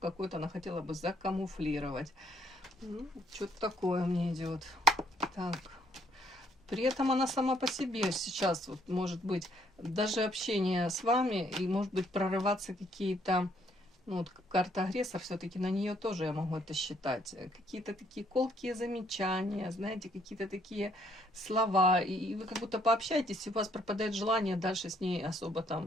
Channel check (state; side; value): normal; both; correlation 0.68